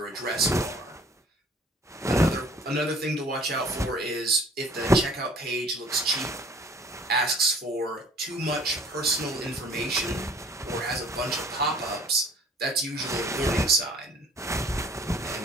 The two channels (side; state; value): both; normal; correlation 0.53